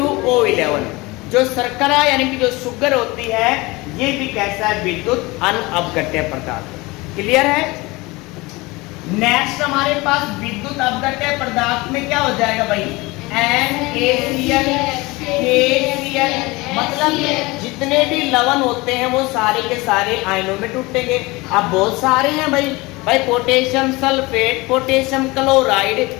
जो शर्करा यानी कि जो शुगर होती है, ये भी कैसा है, विद्युत अनपघट्य पदार्थ। क्लियर है। नेक्स्ट हमारे पास विद्युत अपघट्य पदार्थ में क्या हो जाएगा भाई, NaCl, KCl। मतलब जितने भी लवण होते हैं वो सारे के सारे आयनों में टूटेंगे। अब बहुत सारे हैं भाई potassium sulphate, potassium chloride,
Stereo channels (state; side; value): quieter; right; 22.9 dB